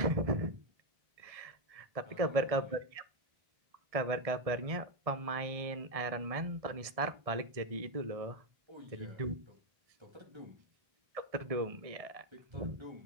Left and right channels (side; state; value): left; late; 1.6 ms